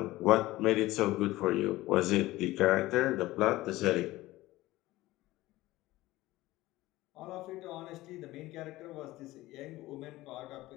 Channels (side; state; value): right; quieter; 17.8 dB